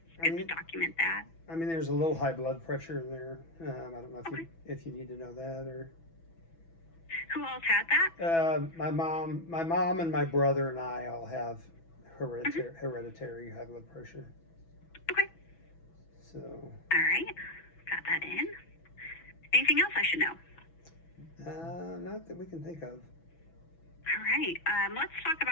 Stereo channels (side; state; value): right; late; 6.1 ms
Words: it's good to document that. I mean, there's a little high blood pressure in there. I don't know if you need to know that or. Who else had that? My mom, and my brother and I all have hereditary high blood pressure. Okay. So. All right. Got that in. Anything else I should know? Not that we can think of. All right. Let's talk